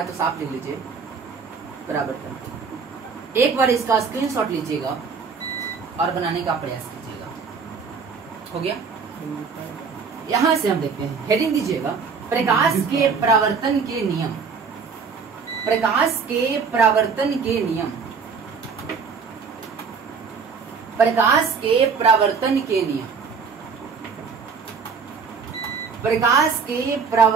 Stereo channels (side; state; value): left; quieter; 5.5 dB